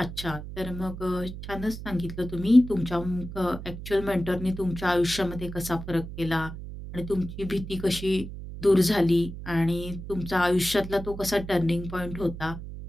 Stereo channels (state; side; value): noise; right; hum, 10 dB below the sound